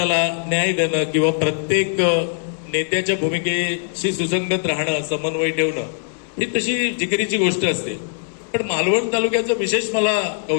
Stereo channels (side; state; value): right; silent; digital silence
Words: न्याय देणं किंवा प्रत्येक नेत्याच्या भूमिकेशी सुसंगत राहणं, समन्वय ठेवणं, ही तशी जिकिरीची गोष्ट असते. पण मालवण तालुक्याचं विशेष मला